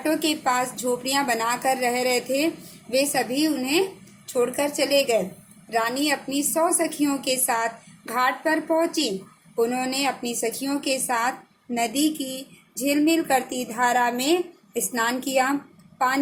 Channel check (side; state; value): both; identical; correlation 1.00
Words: के पास झोपड़ियां बनाकर रह रहे थे वे सभी उन्हें छोड़कर चले गए। रानी अपनी 100 सखियों के साथ घाट पर पहुंची। उन्होंने अपनी सखियों के साथ नदी की झिलमिल करती धारा में स्नान किया।